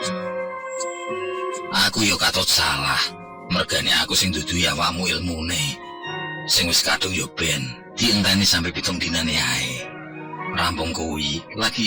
Aku yo katut salah, mergane aku sing dudu awakmu ilmune. Sing wis kadung yo ben, dienteni sampai 7 dinane ae. Rampung kuwi lagi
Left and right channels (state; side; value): identical; both; correlation 1.00